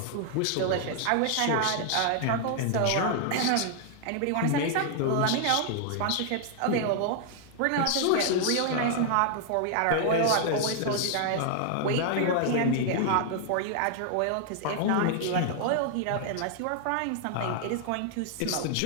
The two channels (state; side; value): different; both; correlation 0.00